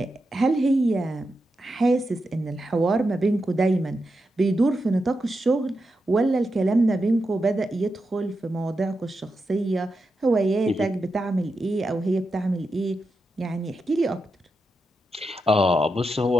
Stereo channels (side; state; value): both; normal; correlation 0.87